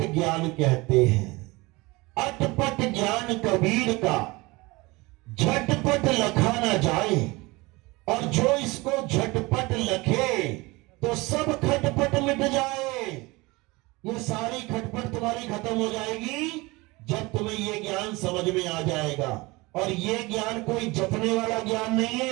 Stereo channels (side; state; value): left; quieter; 23.3 dB